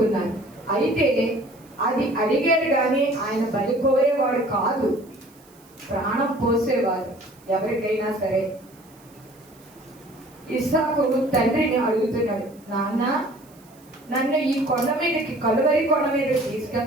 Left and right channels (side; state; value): right; noise; hiss, 28 dB below the sound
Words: అయితే అది అడిగారు కానీ ఆయన బలి కోరేవాడు కాదు, ప్రాణం పోసేవారు ఎవరికైనా సరే. ఇస్సాకు తండ్రిని అడుగుతున్నాడు, నాన్న నన్ను ఈ కొండ మీదకి, కలువరి కొండ మీదకి